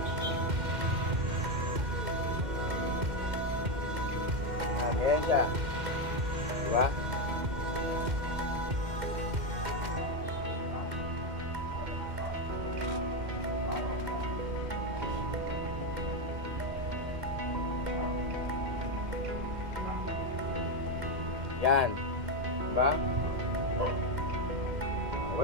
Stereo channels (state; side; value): late; left; 2.1 ms